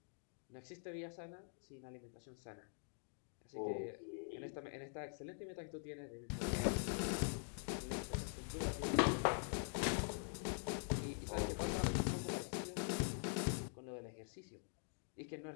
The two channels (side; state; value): right; silent; digital silence